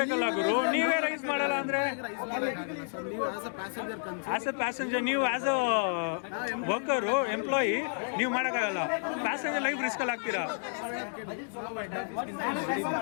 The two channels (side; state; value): right; silent; digital silence